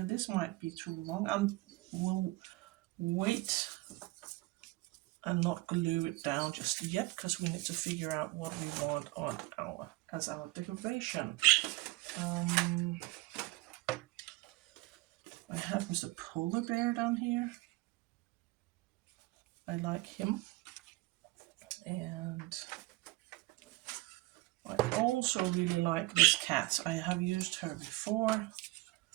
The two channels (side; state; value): left; quieter; 20.9 dB